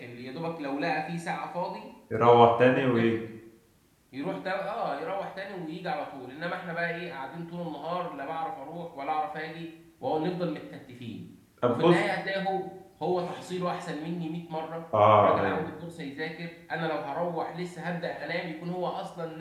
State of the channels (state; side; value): identical; both; correlation 1.00